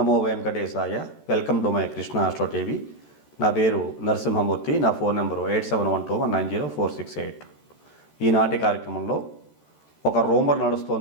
వెంకటేశాయ. Welcome to my Krishna astro TV. నా పేరు నరసింహమూర్తి. నా ఫోన్ నెంబరు 8712190468. ఈనాటి కార్యక్రమంలో ఒక రూమర్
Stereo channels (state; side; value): late; right; 13 ms